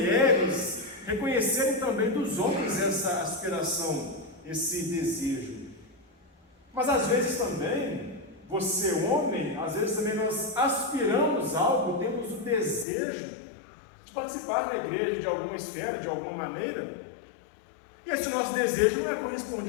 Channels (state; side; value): drops out; right; at 12.9 s